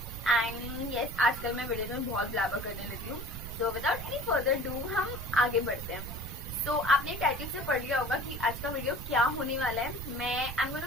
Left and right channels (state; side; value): noise; right; rumble, 10 dB below the sound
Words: and yes, आजकल मैं वीडियोस में बहुत ब्लैबर करने लगी हूँ। So without any further do हम आगे बढ़ते हैं। आपने टाइटल से पढ़ लिया होगा कि आज का वीडियो क्या होने वाला है। मैं I am